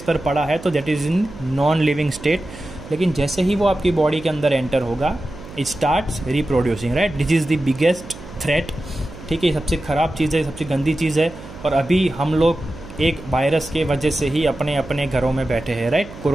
पर पड़ा है तो that is in non living state. लेकिन जैसे ही वो आपकी बॉडी के अंदर एंटर होगा, it starts reproducing, right. This is the biggest threat, ठीक है। सबसे ख़राब चीज़ है, सबसे गंदी चीज़ है। और अभी हम लोग एक वायरस के वजह से ही अपने अपने घरों में बैठे हैं, राइट।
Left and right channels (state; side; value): noise; right; hum, 16 dB below the sound